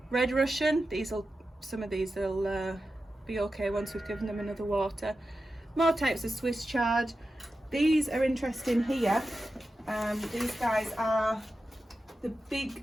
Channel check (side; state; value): both; normal; correlation 0.92